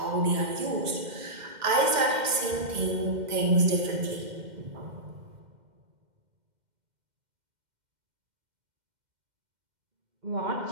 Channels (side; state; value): left; late; 2.1 ms